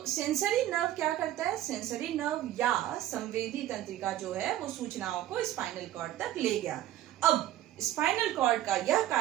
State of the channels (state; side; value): quieter; left; 13.3 dB